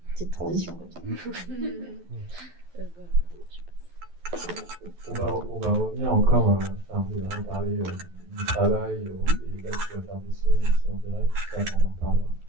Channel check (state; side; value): late; left; 11 ms